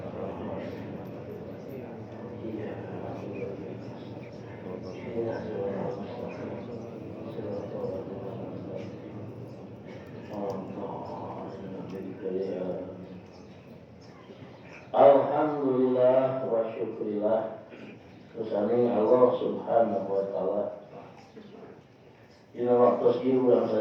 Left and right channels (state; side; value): identical; both; correlation 1.00